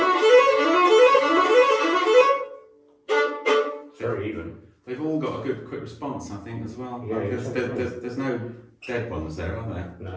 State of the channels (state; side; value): identical; both; correlation 1.00